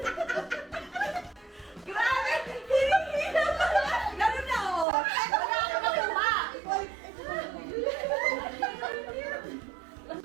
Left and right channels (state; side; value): drops out; left; at 4.9 s